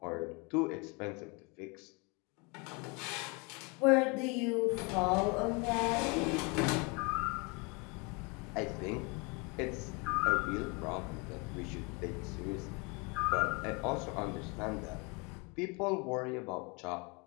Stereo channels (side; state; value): right; quieter; 30.0 dB